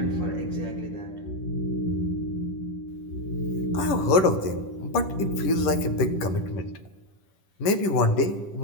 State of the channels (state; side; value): late; right; 10 ms